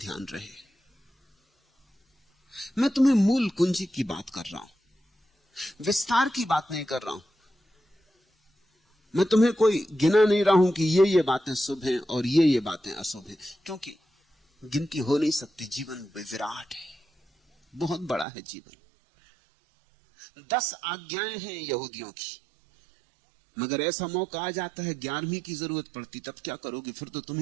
रहे। मैं तुम्हें मूल कुंजी की बात कर रहा हूं, विस्तार की बात नहीं कर रहा हूं। मैं तुम्हें कोई गिना नहीं रहा हूं कि ये बातें शुभ हैं और ये बातें अशुभ हैं, क्योंकि गिनती हो नहीं सकती। जीवन विराट है, बहुत बड़ा है जीवन। 10 आज्ञाएं हैं यहूदियों की, मगर ऐसा मौका आ जाता है 11वीं की जरूरत पड़ती, तब क्या करोगे? फिर तो तुम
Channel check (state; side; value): drops out; left; at 18.2 s